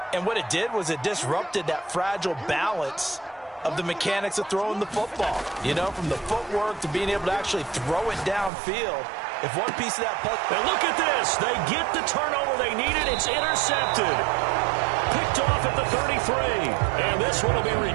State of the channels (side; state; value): left; drops out; at 8.5 s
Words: And what it did was it disrupted that fragile balance of the mechanics of throwing the football. You know, from the footwork to being able to actually throw it downfield. If one piece of that puck... And look at this. They get the turnover they needed. It's intercepted. Picked off at the 33. And this one will be